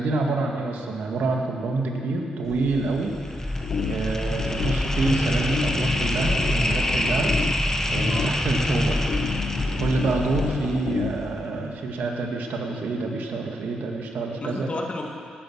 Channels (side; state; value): both; normal; correlation 0.81